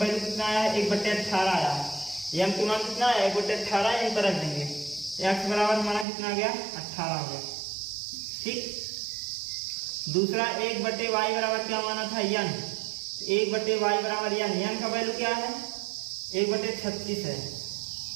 कितना आया है 1/18 आया है। m की मान कितना है 1/18, यहीं पर रख देंगे। x बराबर हमारा कितना आ गया 18 हो गया। ठीक, दूसरा 1/y बराबर क्या माना था n, 1/y बराबर n का वैल्यू क्या है 1/36 है,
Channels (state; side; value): drops out; left; at 6.1 s